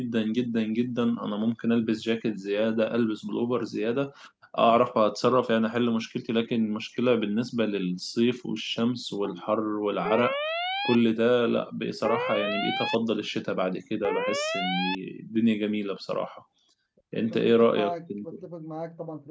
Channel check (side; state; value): both; identical; correlation 1.00